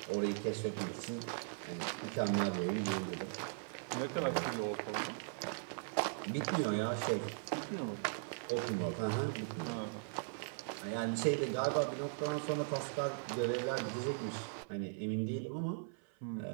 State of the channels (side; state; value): left; silent; 52 dB below the other